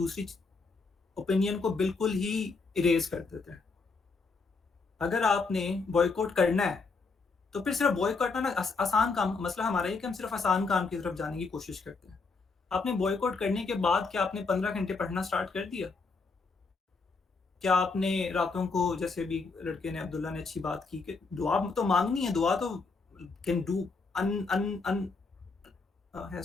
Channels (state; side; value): quieter; right; 4.3 dB